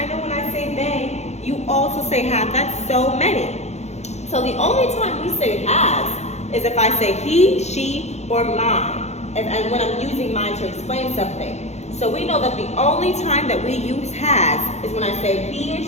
know when I say they, you also say have. That's so many. So the only time we say has is if I say he, she, or mine. And when I'm using mine to explain something. So we know that the only time that we use has is when I say he or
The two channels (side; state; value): right; late; 0.32 ms